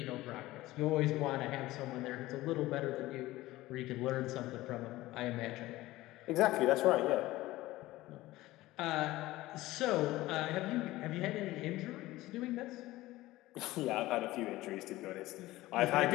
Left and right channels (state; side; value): quieter; right; 17.6 dB